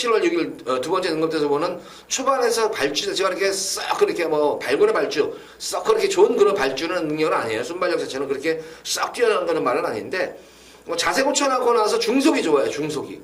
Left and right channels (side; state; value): both; identical; correlation 1.00